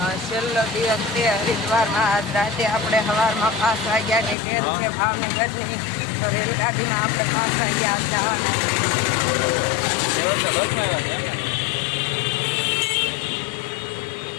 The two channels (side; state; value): right; drops out; at 4.4 s